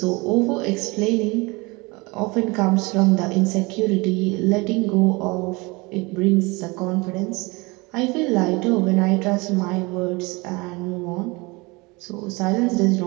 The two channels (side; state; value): left; quieter; 25.4 dB